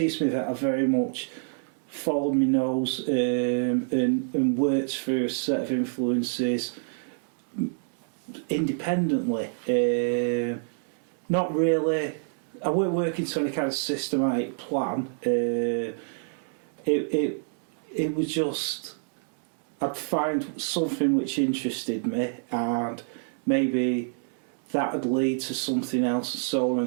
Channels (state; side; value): silent; left; 60 dB below the other